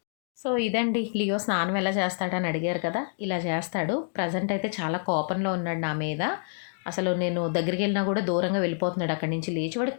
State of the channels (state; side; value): silent; right; digital silence